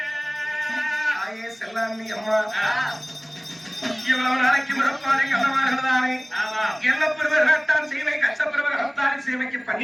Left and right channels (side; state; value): both; identical; correlation 1.00